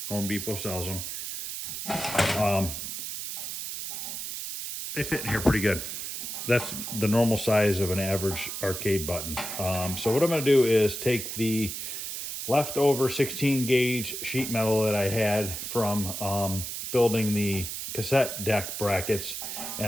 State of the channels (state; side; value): noise; right; hiss, 6 dB below the sound